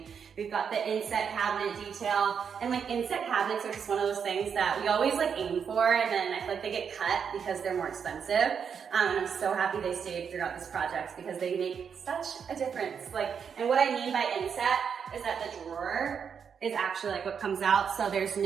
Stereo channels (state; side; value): quieter; left; 6.9 dB